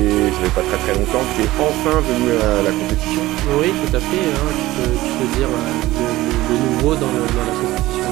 fait pas très longtemps que tu es enfin venu à la compétition. Oui, tout à fait, hein. Tu peux dire le nouveau dans la compétition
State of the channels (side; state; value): left; quieter; 17.3 dB